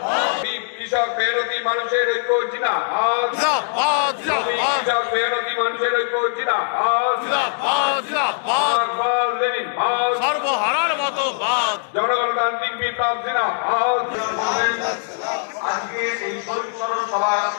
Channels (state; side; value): silent; right; digital silence